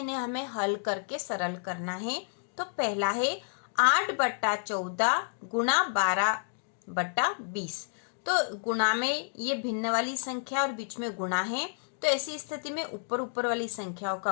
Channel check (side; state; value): right; silent; digital silence